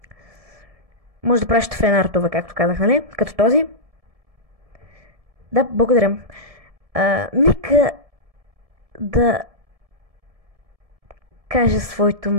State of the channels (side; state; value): left; late; 1.7 ms